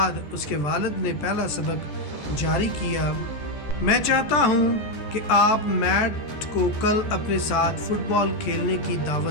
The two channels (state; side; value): late; right; 14 ms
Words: उसके वालिद ने पहला सबक जारी किया। मैं चाहता हूँ कि आप मैट को कल अपने साथ फुटबॉल खेलने की